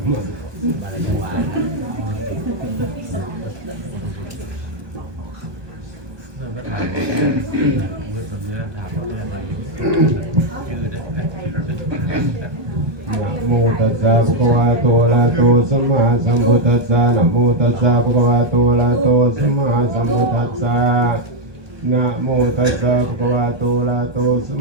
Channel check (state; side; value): late; left; 1.2 ms